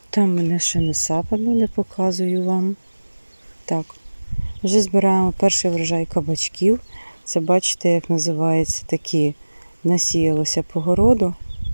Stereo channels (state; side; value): inverted; both; correlation -1.00